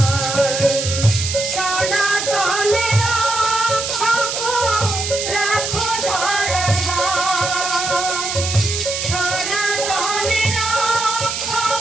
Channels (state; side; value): noise; right; hiss, 3 dB below the sound